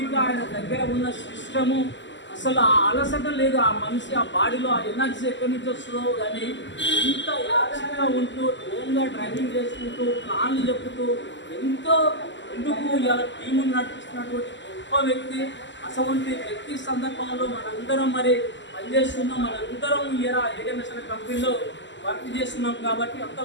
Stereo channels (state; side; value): late; right; 0.54 ms